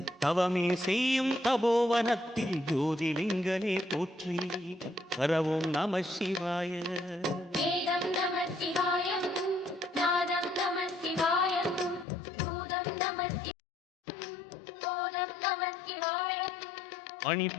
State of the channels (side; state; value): right; drops out; at 12.1 s